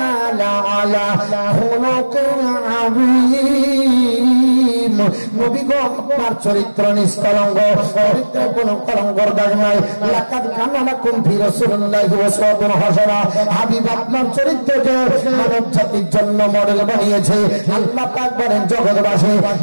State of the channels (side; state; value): both; inverted; correlation -1.00